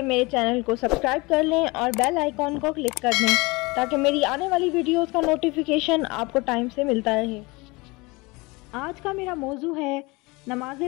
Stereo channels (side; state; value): right; quieter; 24.7 dB